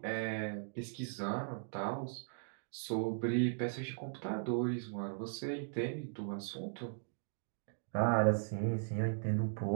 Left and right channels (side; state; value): left; silent; digital silence